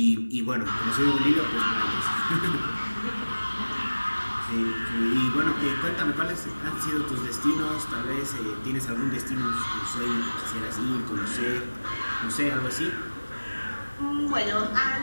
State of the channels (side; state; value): both; inverted; correlation -1.00